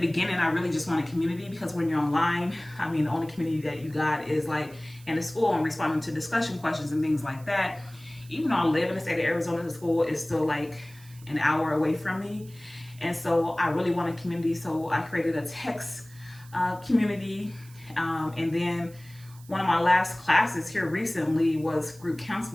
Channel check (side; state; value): right; noise; hiss, 23 dB below the sound